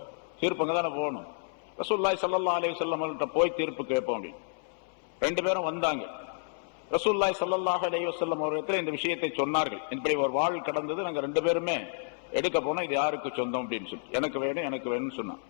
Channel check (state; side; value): silent; right; 58 dB below the other